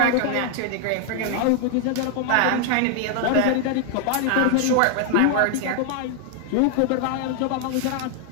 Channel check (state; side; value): different; both; correlation 0.00